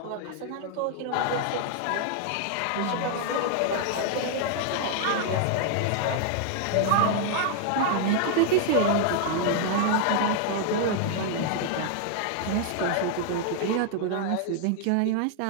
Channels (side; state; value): both; different; correlation 0.00